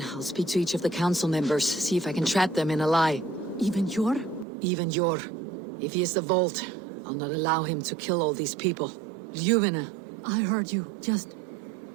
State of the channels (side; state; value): left; drops out; at 4.5 s